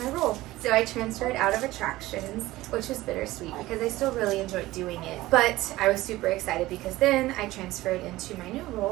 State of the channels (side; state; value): left; quieter; 17.6 dB